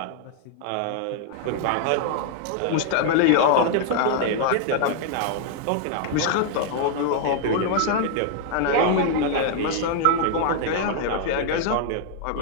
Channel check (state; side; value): different; both; correlation 0.00